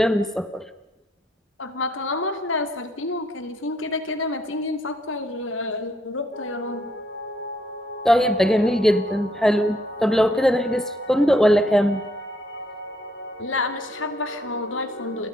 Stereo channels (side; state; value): both; normal; correlation 0.69